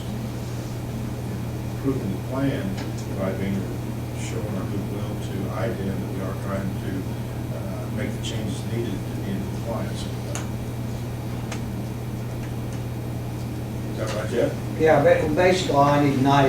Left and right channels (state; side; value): identical; both; correlation 1.00